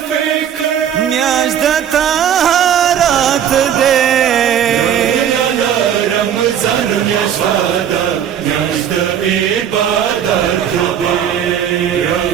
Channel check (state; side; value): quieter; left; 9.2 dB